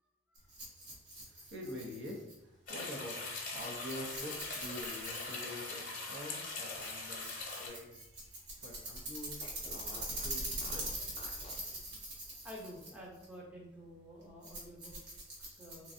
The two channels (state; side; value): normal; both; correlation 0.19